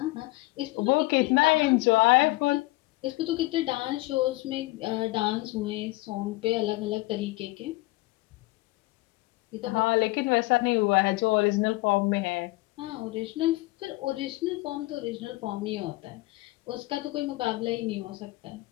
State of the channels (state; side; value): quieter; right; 21.4 dB